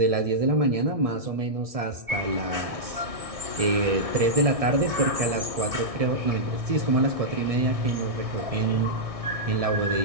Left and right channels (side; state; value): left; late; 1.6 ms